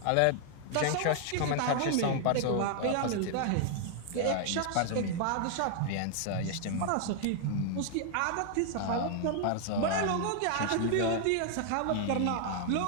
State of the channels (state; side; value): different; both; correlation 0.00